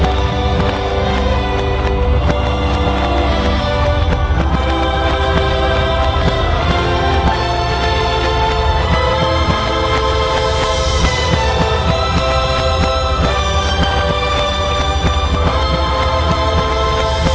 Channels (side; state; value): both; identical; correlation 1.00